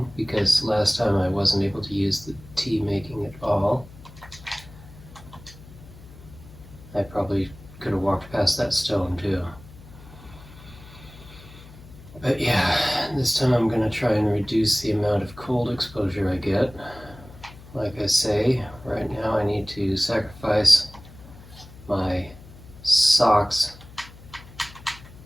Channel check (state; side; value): noise; left; hum, 19 dB below the sound